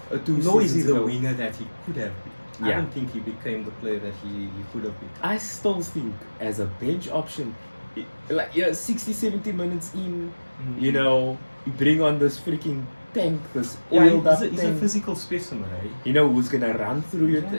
two Nor is he seasons the ago, winger that he could have been. I Yeah. don't think he became the player that he could have been. I still think as a bench option, like 60, 70 minutes in, you know, you bring on this freaking tank, this Yeah, oiled up he's a tank. physical specimen, eh? You know who's gonna run through your Yeah.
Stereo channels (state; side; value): inverted; both; correlation -1.00